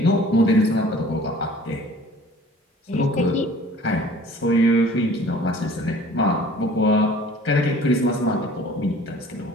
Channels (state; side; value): normal; both; correlation 0.49